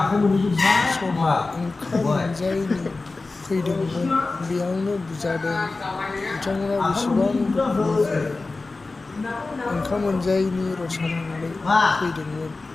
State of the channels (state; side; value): quieter; right; 3.6 dB